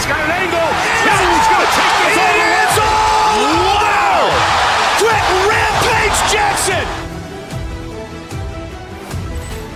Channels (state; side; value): identical; both; correlation 1.00